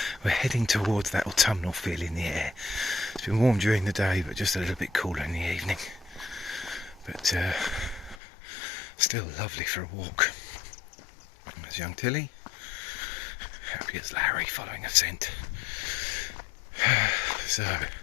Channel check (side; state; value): right; drops out; at 8.2 s